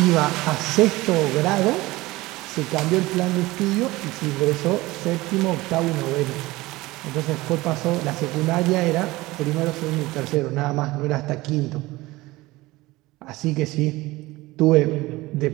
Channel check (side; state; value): left; quieter; 19.8 dB